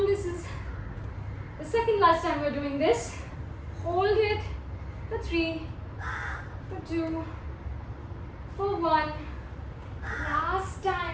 This is the second last time we're doing this. Hold it for 3, for 2, for 1. Last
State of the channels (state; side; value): identical; both; correlation 1.00